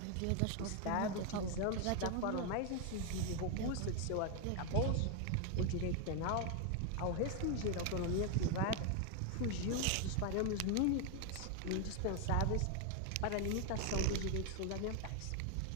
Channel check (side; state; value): both; different; correlation 0.01